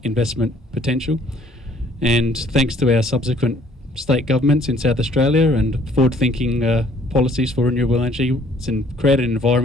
investment potential. And thanks to our subsequent state governments in South Australia and forward-thinking policies for renewable energy, it's created an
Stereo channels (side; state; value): both; normal; correlation 0.59